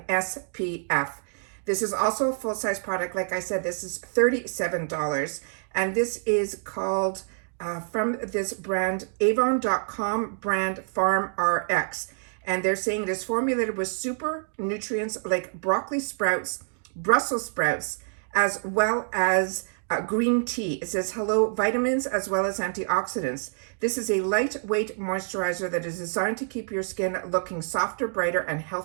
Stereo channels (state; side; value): silent; left; digital silence